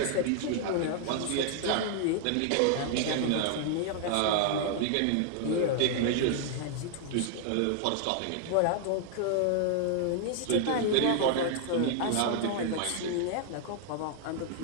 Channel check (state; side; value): different; both; correlation 0.00